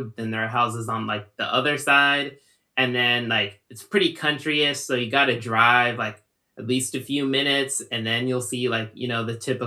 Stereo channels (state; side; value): identical; both; correlation 1.00